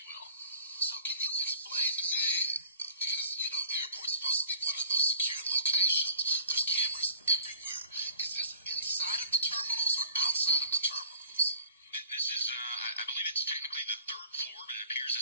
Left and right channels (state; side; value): inverted; both; correlation -0.47